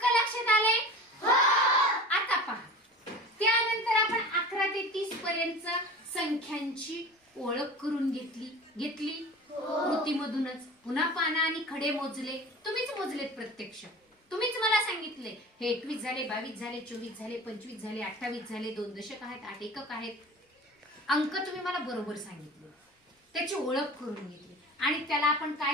लक्षात आले? आता पहा. त्यानंतर आपण 11 ते 30 पर्यंत संख्यांची ओळख करून घेतली कृतीमधूनच. पुन्हा पानं आणि खडे मोजले. तुम्हीच मोजलेत प्रत्यक्ष. तुम्हीच मला सांगितले हे 21 झाले, 22 झाले, 24 झाले, 25 झाले, 28 झाले. 2 दशक आहेत, 8 एकक आहेत. अंक तुम्ही मला बरोबर सांगितले. त्याची ओळख करून घेतली आणि त्याला आपण काय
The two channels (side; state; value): both; normal; correlation 0.37